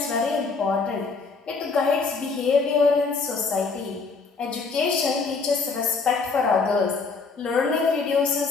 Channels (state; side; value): quieter; right; 4.5 dB